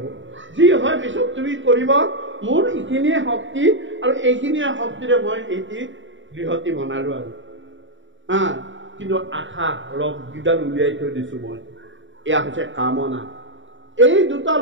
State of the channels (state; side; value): late; left; 0.55 ms